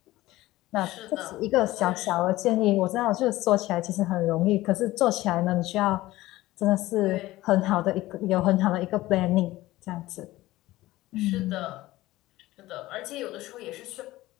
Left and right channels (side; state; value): right; quieter; 17.4 dB